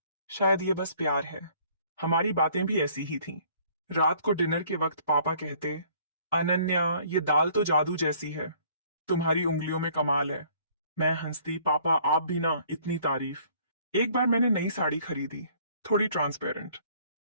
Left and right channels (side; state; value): both; inverted; correlation -0.58